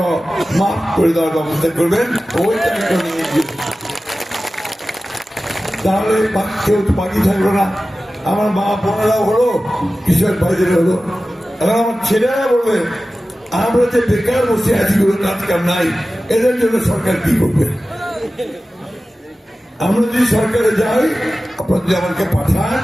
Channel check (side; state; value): both; normal; correlation 0.95